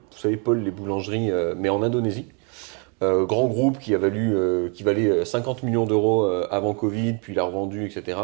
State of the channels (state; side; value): quieter; left; 36.1 dB